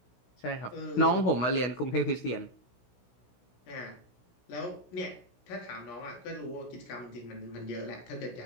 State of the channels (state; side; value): late; right; 16 ms